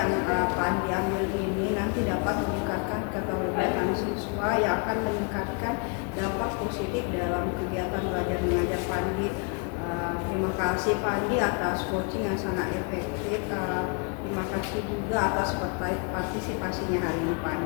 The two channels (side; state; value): right; quieter; 36.1 dB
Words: Pak Andi ambil ini nanti dapat meningkatkan keterlibatan siswa siswa yang akan meningkatkan dampak positif dalam kegiatan belajar mengajar Pandi. Terima kasih Pandi atas coaching yang sangat efektif. Terima kasih juga atas partisipasinya hari ini